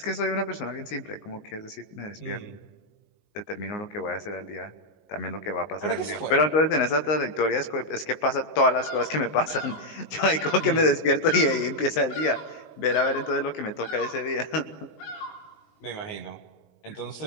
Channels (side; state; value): right; late; 19 ms